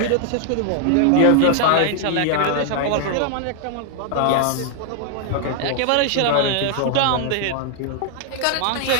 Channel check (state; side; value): different; both; correlation 0.00